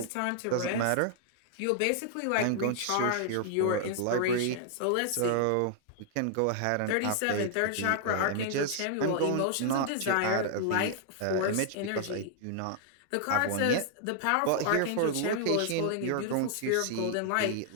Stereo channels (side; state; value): both; different; correlation -0.01